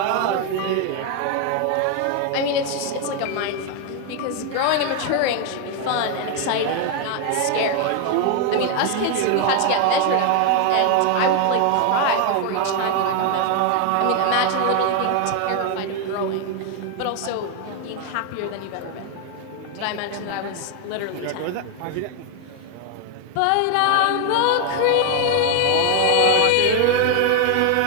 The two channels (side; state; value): both; different; correlation 0.01